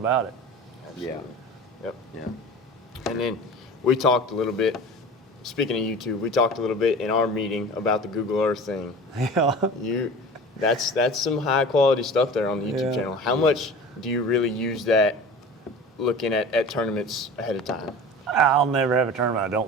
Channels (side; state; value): both; normal; correlation 0.38